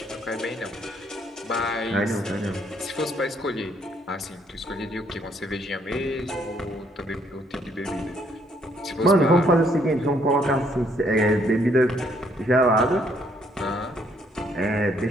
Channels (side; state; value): both; normal; correlation 0.68